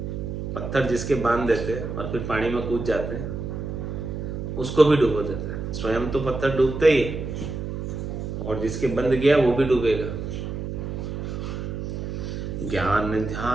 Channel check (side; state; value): right; noise; hum, 5 dB below the sound